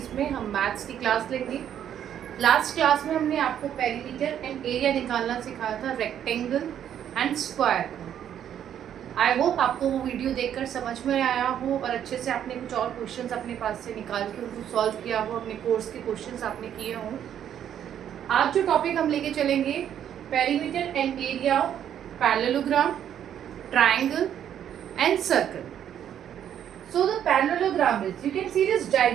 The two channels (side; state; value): left; quieter; 9.8 dB